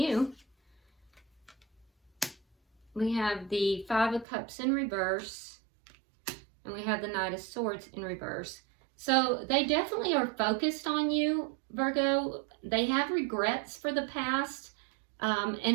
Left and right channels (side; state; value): left; drops out; at 4.2 s